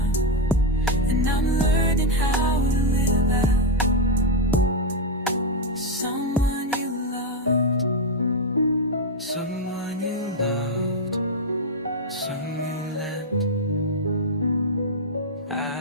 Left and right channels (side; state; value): both; normal; correlation 0.03